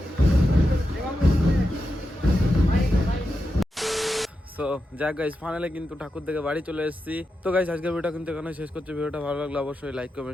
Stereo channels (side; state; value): both; normal; correlation 0.88